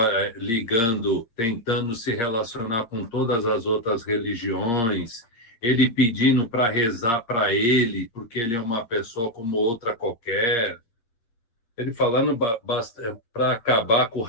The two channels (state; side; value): late; right; 8.6 ms